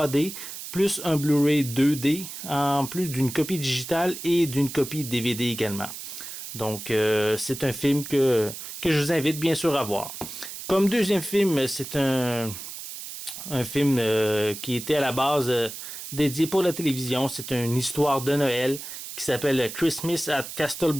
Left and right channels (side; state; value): right; noise; hiss, 10 dB below the sound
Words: plus un Blu-ray 2D, en plus d'une copie digitale et d'une copie DVD également. Donc, c'est un film que je vous invite bien sûr à voir. Comme deuxième film, c'est un film qui était à la base dédié pour la télévision. C'est une histoire de Noël qui s'appelle Christmas at